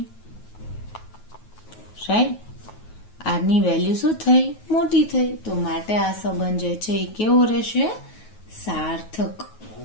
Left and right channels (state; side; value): late; right; 9.3 ms